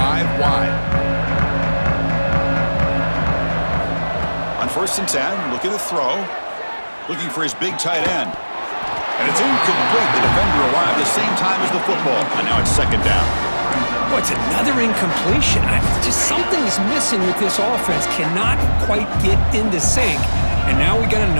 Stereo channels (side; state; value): both; inverted; correlation -1.00